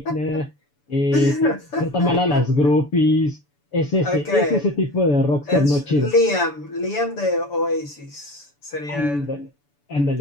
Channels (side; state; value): right; late; 7.0 ms